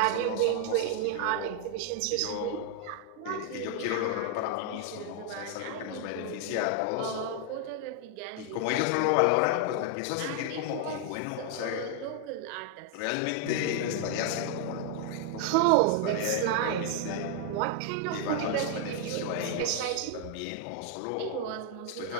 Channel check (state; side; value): different; both; correlation 0.00